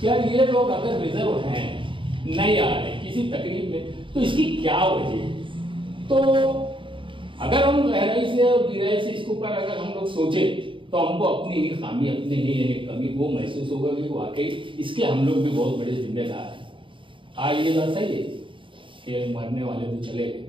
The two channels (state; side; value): late; left; 0.25 ms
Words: कि यार ये लोग अगर रिजर्व हैं, नहीं आ रहे किसी तकलीफ में, तो इसकी क्या वजह है? तो अगर हम गहराई से और गहराई से इसके ऊपर अगर हम लोग सोचे तो हमको अपनी ही खामी, अपनी ही कमी वो महसूस होगा कि वाकई इसके हम लोग भी बहुत बड़े जिम्मेदार हैं। आज ये बात सही है कि मरने वाले तो चले गए,